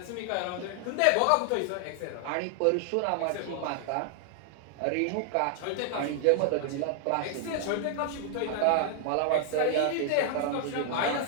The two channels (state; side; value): different; both; correlation 0.00